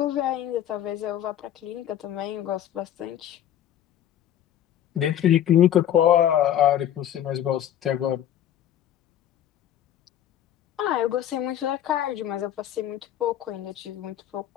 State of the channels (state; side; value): quieter; right; 11.0 dB